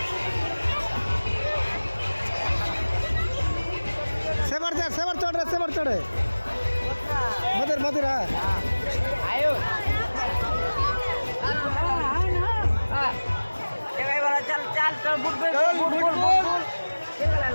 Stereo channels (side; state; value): both; inverted; correlation -1.00